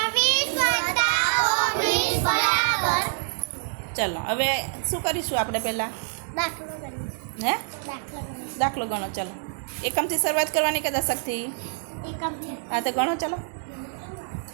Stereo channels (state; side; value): silent; left; digital silence